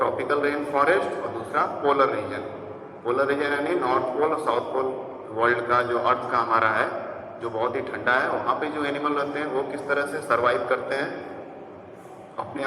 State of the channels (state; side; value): identical; both; correlation 1.00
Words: रेन फॉरेस्ट और दूसरा पोलर रीजन। पोलर रीजन यानी नॉर्थ पोल और साउथ पोल वर्ल्ड का, जो अर्थ का हमारा है, जो बहुत ही ठंडा है, वहाँ पे जो एनिमल रहते हैं वो किस तरह से सर्वाइव करते हैं, अपने